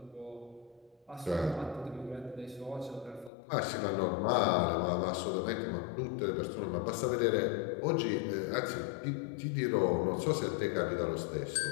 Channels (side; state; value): right; drops out; at 3.3 s